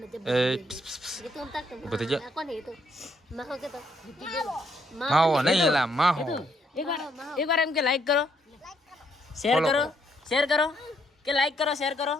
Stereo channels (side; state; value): both; normal; correlation 0.72